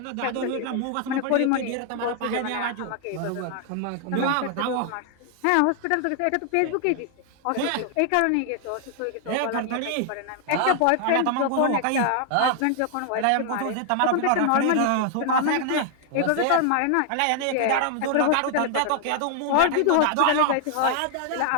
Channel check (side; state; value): both; different; correlation 0.00